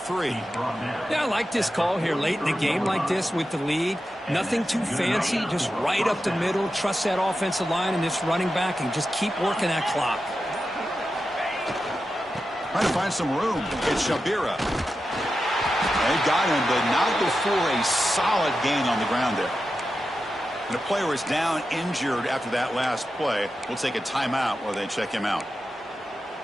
Yeah, I like this call here late in the game like this with the lead. Nothing too fancy, just right up the middle. Trust that offensive line and this running back and just keep working that clock. Trying to find some room. It's Shabira. They got him, but not before a solid gain on the ground there. And a player is down injured after that last play. We'll take a timeout while they check him out.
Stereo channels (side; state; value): both; normal; correlation 0.91